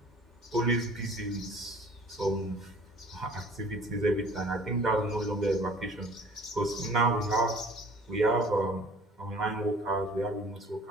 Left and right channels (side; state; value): both; normal; correlation 0.50